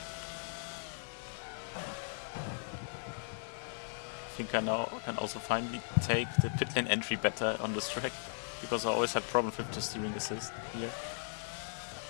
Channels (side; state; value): right; silent; digital silence